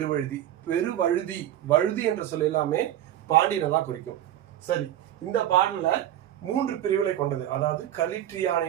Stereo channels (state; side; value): quieter; left; 12.2 dB